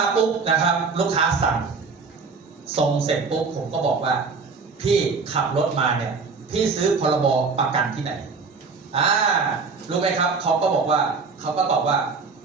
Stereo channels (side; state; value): left; quieter; 4.8 dB